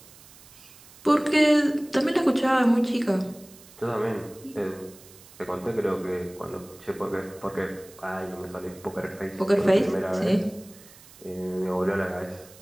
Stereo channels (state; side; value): noise; right; hiss, 22 dB below the sound